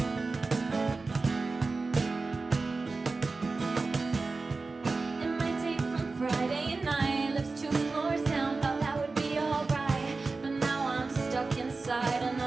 And my date from Friday night lives 2 floors down. Thought that would be alright, but now I'm stuck inside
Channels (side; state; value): left; quieter; 3.9 dB